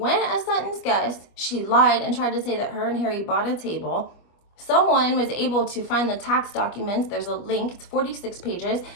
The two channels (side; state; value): right; late; 25 ms